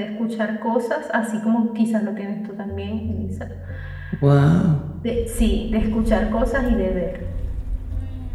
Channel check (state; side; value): identical; both; correlation 1.00